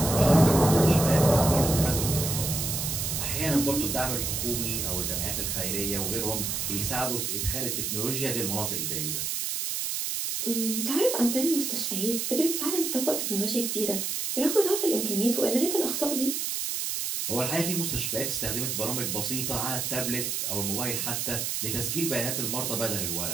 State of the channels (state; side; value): noise; right; hiss, 1 dB below the sound